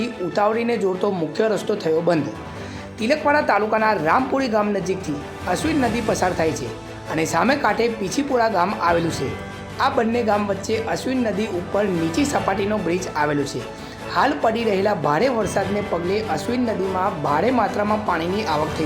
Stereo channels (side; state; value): both; identical; correlation 1.00